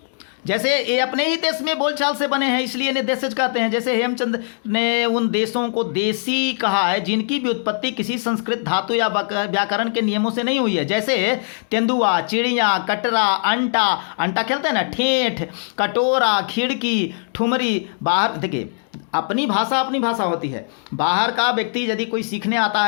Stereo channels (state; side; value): silent; right; digital silence